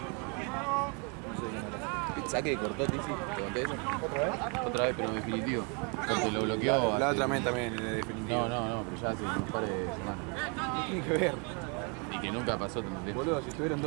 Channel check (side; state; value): left; quieter; 34.3 dB